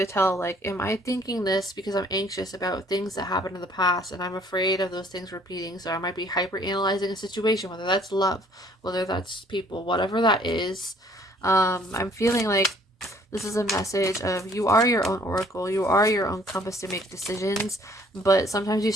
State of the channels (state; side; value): normal; both; correlation 0.59